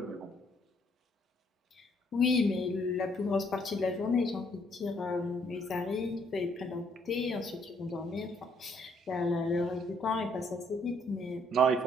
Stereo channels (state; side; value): normal; both; correlation 0.68